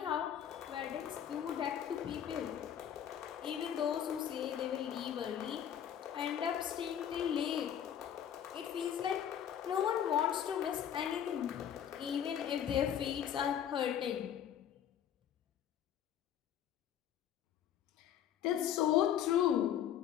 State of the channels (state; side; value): quieter; right; 9.6 dB